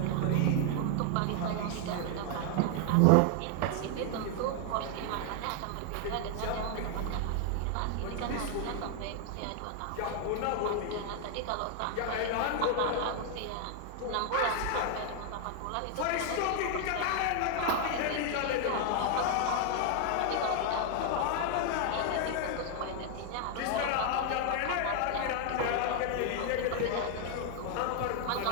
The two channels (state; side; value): different; both; correlation 0.00